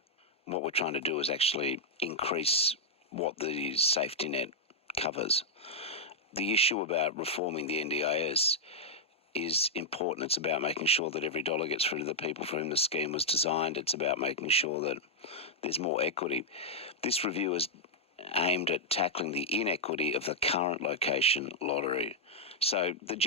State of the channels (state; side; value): normal; both; correlation -0.03